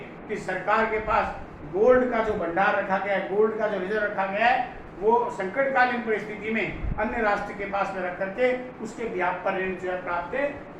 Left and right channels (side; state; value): both; identical; correlation 1.00